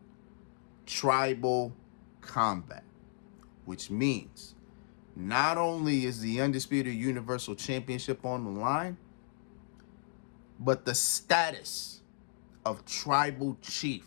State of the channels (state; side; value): silent; right; digital silence